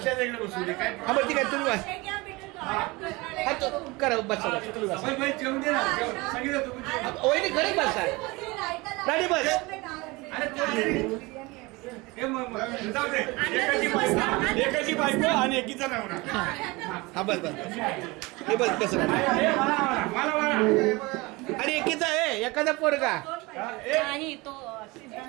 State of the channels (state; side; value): quieter; left; 23.7 dB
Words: वेगळ्या बसू दे काय. हा बरं ठीक आहे, तुम्ही करा बसा तुम्ही बसा. जेवण दे ना, सांगितलं तुम्ही. वहिनी घरी बसा, राणी बस. एकाची बायको आणि एकीचा नवरा. हा बस बस हे बस कसं आणि एकीचा आहे एखादा पोरगा. नाही तो